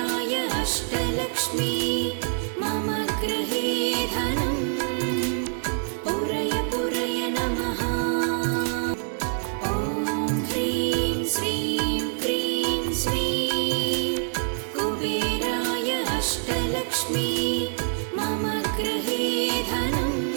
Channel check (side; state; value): left; silent; digital silence